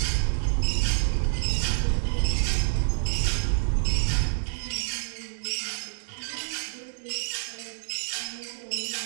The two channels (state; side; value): silent; left; digital silence